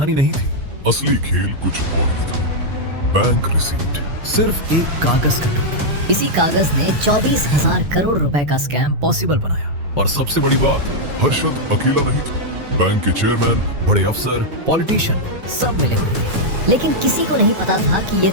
नहीं थी। असली खेल कुछ और ही था। बैंक रिसीट, सिर्फ एक कागज का टुकड़ा। इसी कागज ने 24,000 करोड़ रुपए का स्कैम पॉसिबल बनाया। और सबसे बड़ी बात, हर्षद अकेला नहीं था। बैंक के चेयरमैन, बड़े अफसर, पॉलिटिशियन सब मिले हुए थे। लेकिन किसी को नहीं पता था कि ये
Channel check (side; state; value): left; late; 6.6 ms